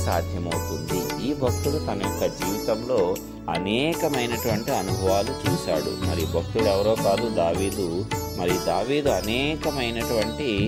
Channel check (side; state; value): both; identical; correlation 1.00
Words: సాధ్యమవుతుంది. ఈ భక్తుడు తన యొక్క జీవితంలో అనేకమైనటువంటి అనుభవాలు చూశాడు. మరి భక్తుడు ఎవరో కాదు, దావీదు. మరి దావీదు అనేకమైనటువంటి